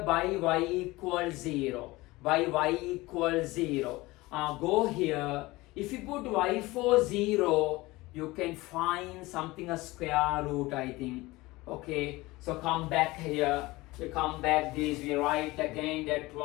by y equals 0. By y equals 0. Go here. If you put y for 0, you can find something a square root, I think. Okay, so come back here. You come back this, we write again that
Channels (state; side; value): quieter; right; 20.6 dB